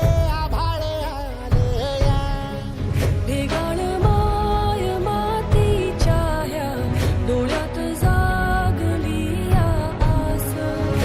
आभाळ आलं या ढेगाळ माय मातीच्या ह्या डोळ्यात जागली या आस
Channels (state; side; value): identical; both; correlation 1.00